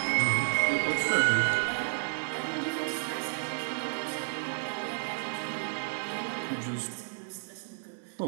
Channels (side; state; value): left; silent; digital silence